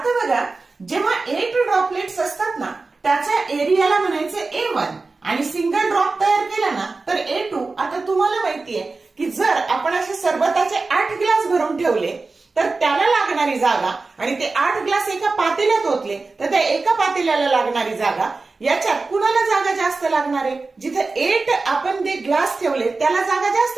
बघा, जेव्हा 8 ड्रॉपलेट्स असतात ना त्याच्या एरियाला म्हणायचं A1 आणि सिंगल ड्रॉप तयार केला ना तर A2. आता तुम्हाला माहितीये की जर आपण असे सरबताचे 8 ग्लास भरून ठेवले तर त्याला लागणारी जागा आणि ते 8 ग्लास एका पातेल्यात ओतले तर त्या एका पातेल्याला लागणारी जागा, याच्यात कुणाला जागा जास्त लागणार आहे? जिथे 8 आपण ते ग्लास ठेवले त्याला जागा जास्त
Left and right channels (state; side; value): quieter; left; 3.8 dB